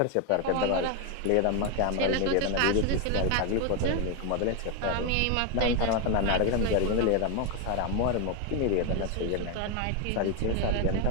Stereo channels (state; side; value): different; both; correlation 0.01